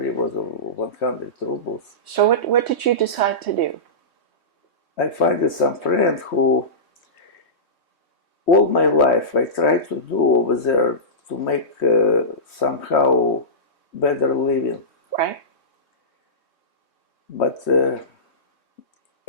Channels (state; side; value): late; right; 3.2 ms